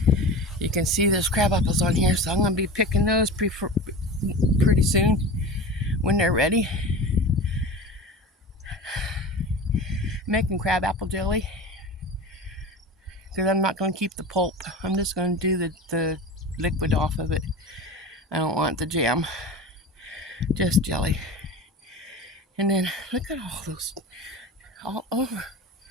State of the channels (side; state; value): both; normal; correlation 0.31